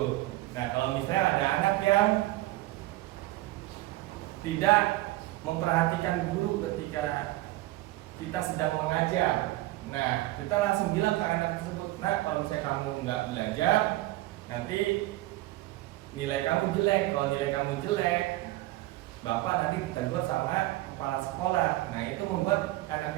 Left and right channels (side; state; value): left; quieter; 17.9 dB